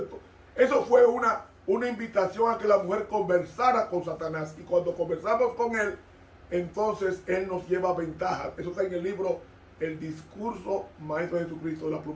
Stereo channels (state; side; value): identical; both; correlation 1.00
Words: Eso fue una invitación a que la mujer conversara con Satanás. Y cuando conversamos con él, entonces él nos lleva ventaja. Eso está en el libro El Discurso Maestro de Jesucristo de la